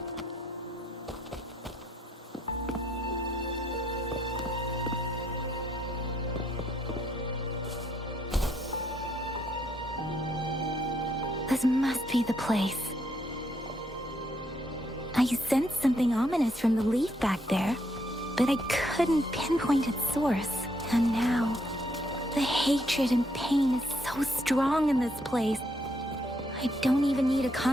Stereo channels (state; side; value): normal; both; correlation 0.73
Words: This must be the place. I sensed something ominous from the leaf back there, but I couldn't pinpoint its source. And now, the hatred and pain is so strong in this place. I don't even need to